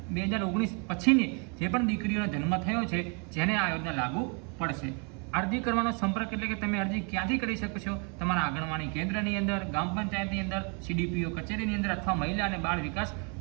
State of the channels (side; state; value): left; quieter; 36.1 dB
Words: પછીની જે પણ દીકરીઓનો જન્મ થયો છે જેને આ યોજના લાગુ પડશે। અરજી કરવાનો સંપર્ક એટલે કે તમે અરજી ક્યાંથી કરી શકો છો? તમારા આંગણવાડી કેન્દ્રની અંદર, ગ્રામ પંચાયતની અંદર, CDPO કચેરીની અંદર અથવા મહિલા અને બાળ વિકાસ